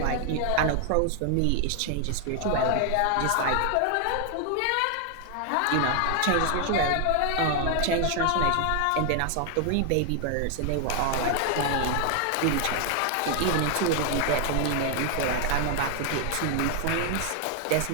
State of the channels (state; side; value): different; both; correlation 0.00